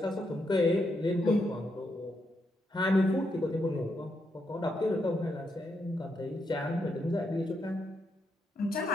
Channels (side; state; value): both; normal; correlation 0.80